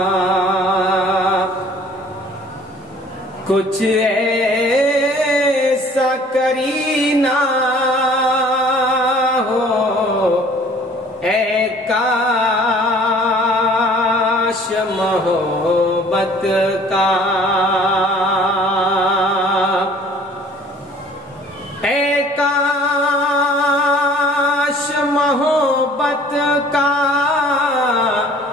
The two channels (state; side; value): normal; both; correlation 0.52